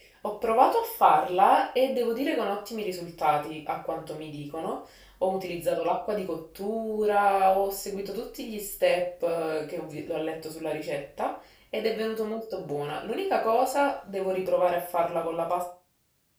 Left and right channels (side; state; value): both; identical; correlation 1.00